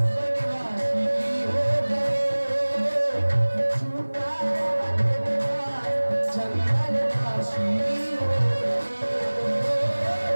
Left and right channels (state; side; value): inverted; both; correlation -1.00